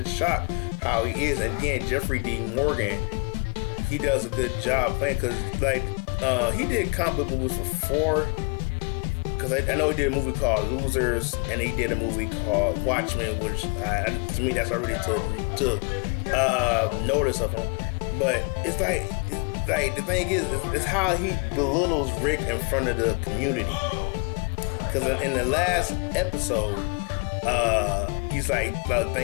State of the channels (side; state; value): right; quieter; 31.5 dB